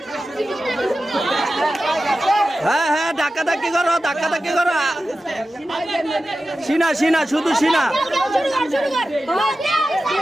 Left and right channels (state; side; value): normal; both; correlation 0.93